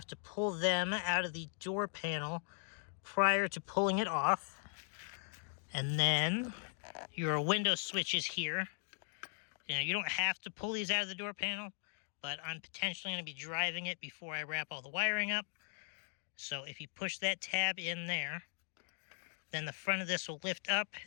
to pull them out of the door panel prior to pulling it off. And then your window switches here. You know, you don't have to pull these out of the door panel, but I'm potentially going to be driving it before I wrap all the wiring up. So if you push that tab in there, then the front of this will lift up,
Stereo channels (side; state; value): right; silent; 52 dB below the other